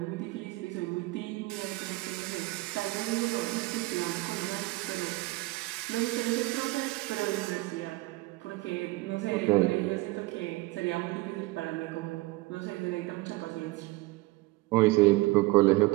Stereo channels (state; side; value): quieter; left; 21.3 dB